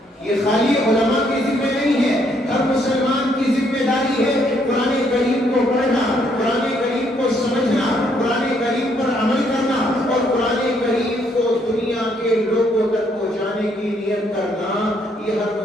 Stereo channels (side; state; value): both; normal; correlation 0.70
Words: یہ خالی علماء کے ذمہ نہیں ہے، ہر مسلمان کی ذمہ داری ہے قرآن کریم کو پڑھنا، قرآن کریم کو سمجھنا، قرآن کریم پر عمل کرنا، اور قرآن کریم کو دنیا کے لوگوں تک پہنچانے کی نیت کرنا۔ یہ ہر